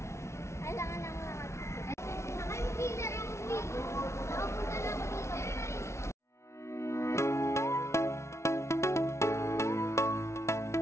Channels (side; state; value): right; late; 0.13 ms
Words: Alangan ang lahat. Nakay mo killer ang uwi. Nakapunta na ako dito.